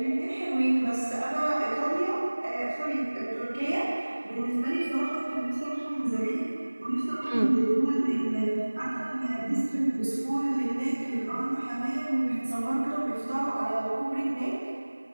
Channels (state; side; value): inverted; both; correlation -1.00